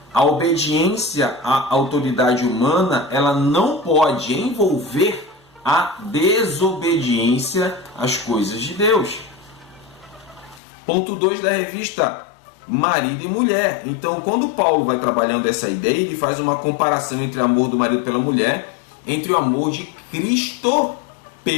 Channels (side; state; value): right; drops out; at 10.6 s